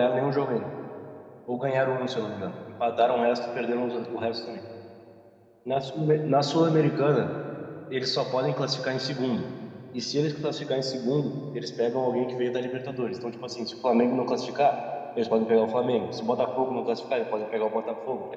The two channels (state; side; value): identical; both; correlation 1.00